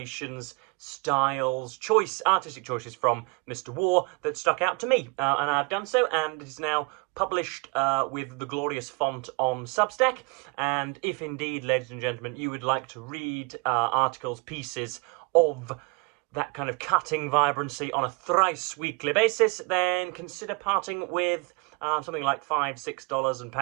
styles, artistic choices from Mr. War that stuck out to me, and I've done so, and it is now published with the glorious font on Substack. And if indeed, ladies and gentlemen, you would like to read articles, pieces of that kind of cutting vibrancy on a thrice weekly basis, then consider parting with something like $5, $6 and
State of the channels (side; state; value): left; quieter; 31.0 dB